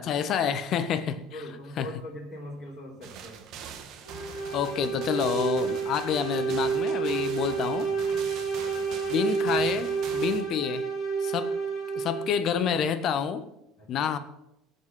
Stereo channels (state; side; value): normal; both; correlation 0.52